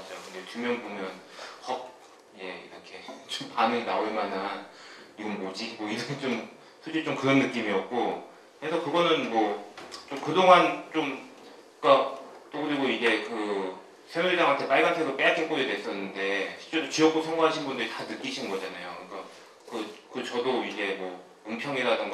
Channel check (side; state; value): both; identical; correlation 1.00